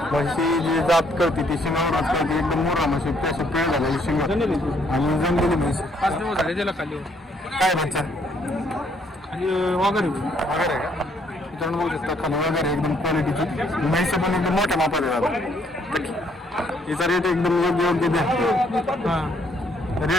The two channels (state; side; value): normal; both; correlation 0.68